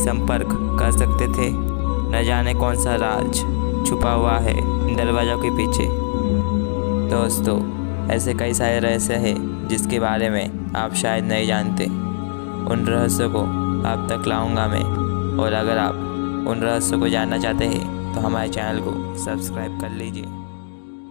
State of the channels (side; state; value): right; silent; digital silence